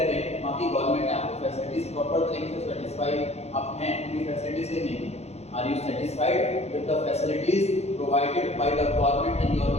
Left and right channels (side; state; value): right; late; 0.31 ms